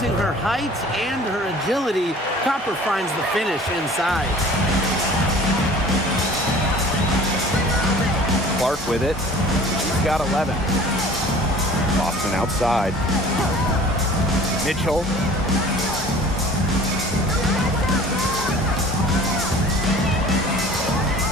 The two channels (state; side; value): normal; both; correlation 0.46